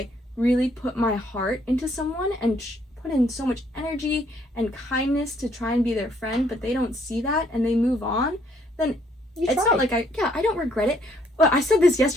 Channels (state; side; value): normal; both; correlation 0.67